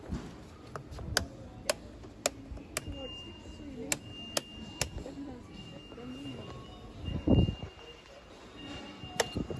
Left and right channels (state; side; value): identical; both; correlation 1.00